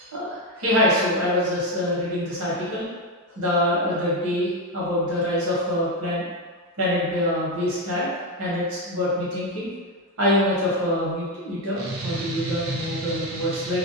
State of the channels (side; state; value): both; normal; correlation 0.10